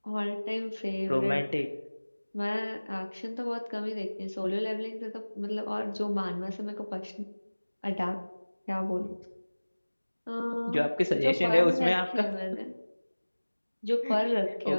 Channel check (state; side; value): inverted; both; correlation -1.00